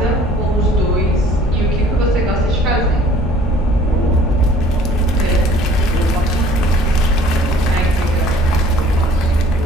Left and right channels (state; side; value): normal; both; correlation 0.54